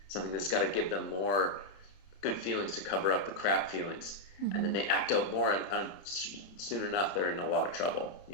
something that's got to give them more good feelings to cover up the crap feelings. And then they act out more, and soon enough they're in a lot of trouble.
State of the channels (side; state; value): right; late; 31 ms